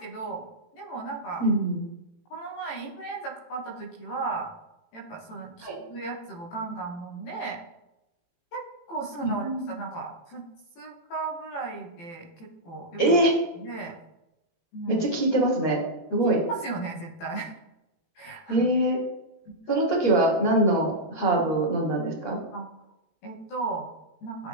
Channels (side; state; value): right; late; 18 ms